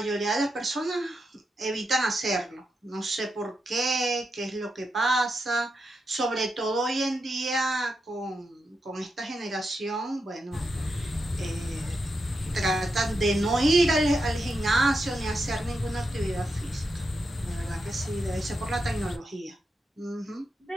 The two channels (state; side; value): normal; both; correlation 0.86